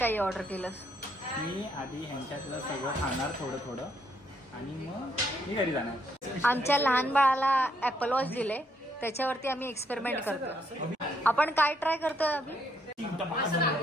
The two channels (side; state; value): both; normal; correlation 0.73